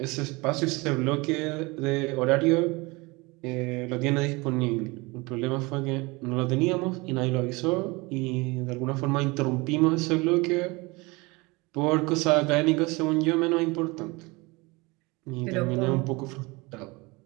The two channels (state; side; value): quieter; left; 24.8 dB